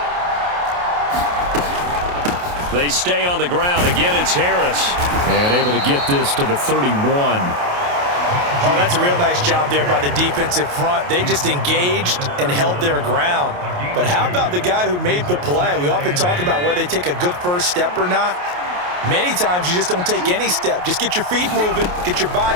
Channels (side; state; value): left; late; 28 ms